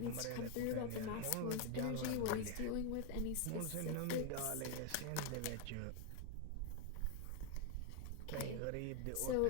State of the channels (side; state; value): both; different; correlation 0.01